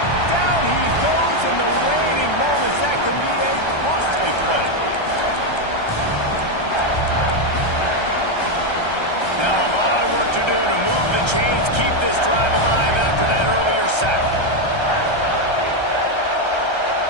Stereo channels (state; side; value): late; right; 1.3 ms